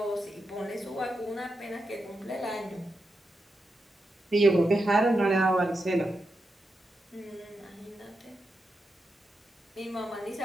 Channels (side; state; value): both; normal; correlation 0.87